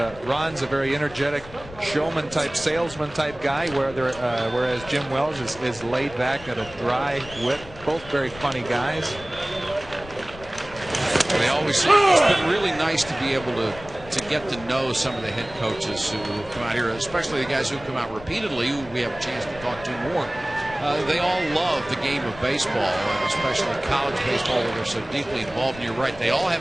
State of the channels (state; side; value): noise; left; rumble, 17 dB below the sound